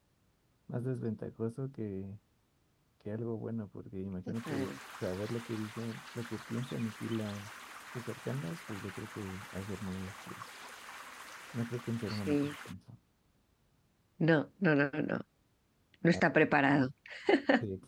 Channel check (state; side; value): identical; both; correlation 1.00